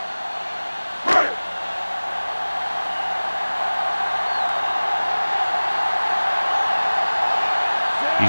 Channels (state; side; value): inverted; both; correlation -1.00